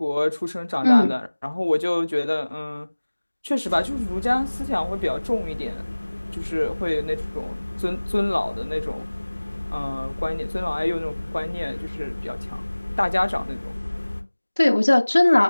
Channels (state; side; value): inverted; both; correlation -1.00